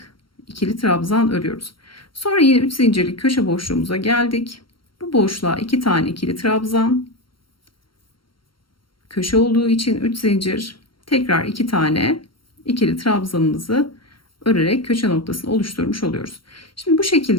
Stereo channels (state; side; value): late; right; 0.73 ms